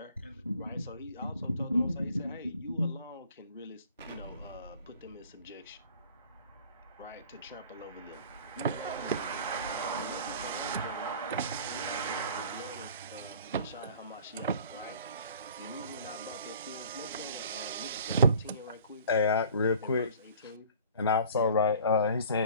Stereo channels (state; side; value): inverted; both; correlation -0.48